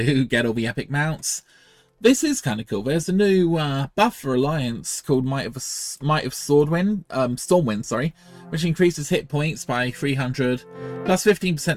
get all the epic mounts. This is kind of cool. There's a new buff for Alliance called Might of Stormwind, sorry, which increases hit points by 300, plus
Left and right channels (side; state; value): both; identical; correlation 1.00